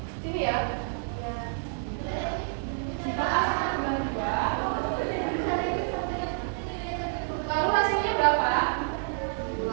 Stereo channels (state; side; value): silent; left; digital silence